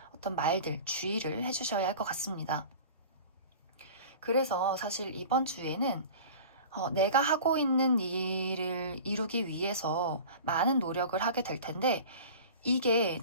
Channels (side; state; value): both; inverted; correlation -0.39